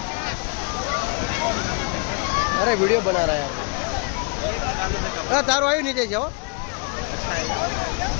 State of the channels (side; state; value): right; quieter; 33.2 dB